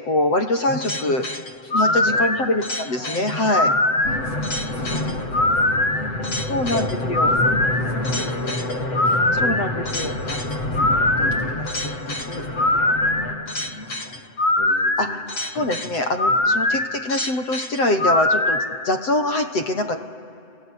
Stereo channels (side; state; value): right; late; 7.9 ms